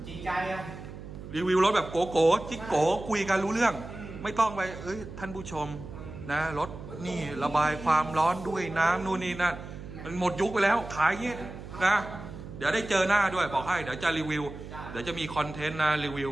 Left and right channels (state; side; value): noise; right; hum, 12 dB below the sound